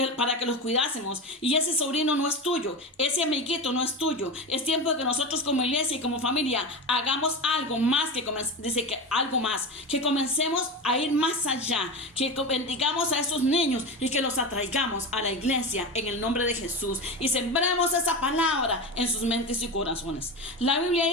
para que los cuidásemos. Y ese sobrino no es tuyo, ese amiguito no es tuyo. Es tiempo de que nosotros como iglesia y como familia hagamos algo más que comencemos a ir más allá, que bendigamos a esos niños y que los atraigamos a la iglesia en el nombre de Jesús y sembremos esa palabra en sus mentes y corazones. La Biblia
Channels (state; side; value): normal; both; correlation 0.23